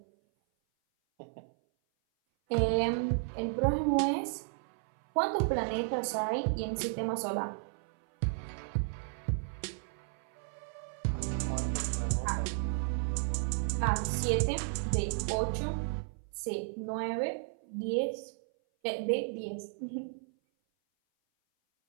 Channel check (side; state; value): left; silent; 55 dB below the other